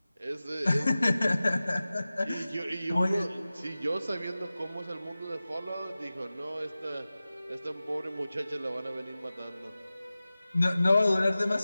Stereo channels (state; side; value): inverted; both; correlation -0.96